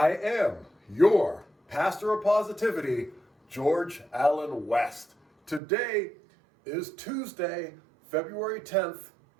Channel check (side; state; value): left; drops out; at 5.6 s